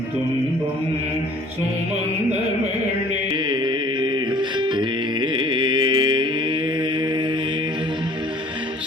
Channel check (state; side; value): normal; both; correlation 0.52